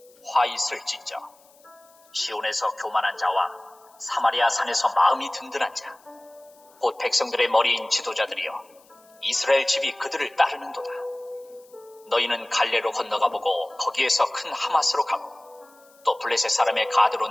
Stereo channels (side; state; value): left; noise; hiss, 29 dB below the sound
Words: 화 있을진저 시온에서 교만한 자와 사마리아 산에서 마음이 든든한 자 곧 백성들의 머리인 지도자들이여 이스라엘 집이 그들을 따르는도다. 너희는 갈레로 건너가 보고 거기에서 큰 하마스로 가고 또 블레셋 사람의 가드로